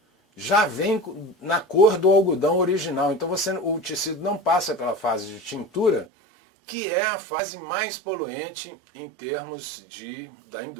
já vem na cor do algodão original. Então o tecido não passa pela fase de tintura, que é a fase mais poluente em termos da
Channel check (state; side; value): drops out; left; at 6.1 s